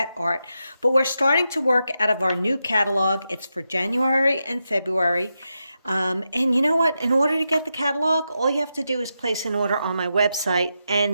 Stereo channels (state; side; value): inverted; both; correlation -0.87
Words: art, but we're starting to work out of our new catalog. It's for January and February. And you know what? In order to get the catalog, all you have to do is place an order on my website